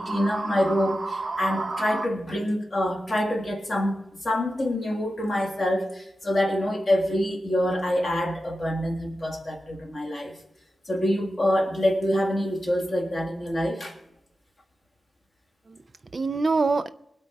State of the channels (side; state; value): both; normal; correlation 0.91